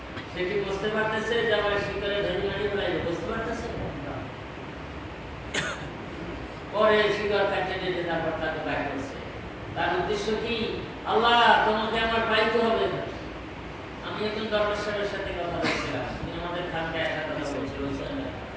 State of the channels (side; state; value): both; identical; correlation 1.00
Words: সে কি বুঝতে পারতেছে যে আমার শিকড়ে ধরে মারি ফেলাইবে? বুঝতে পারতেছে? পরে শিকড় কাটতে দিতে তারপর তাকে বাইর করছে। তার উদ্দেশ্য কি? আল্লাহ তোমাকে আমার পাইতে হবে। আমি একজন দরবেশের সাথে কথা বলছিলাম, তিনি আমাদের খানকে একটা কথা বলছিল।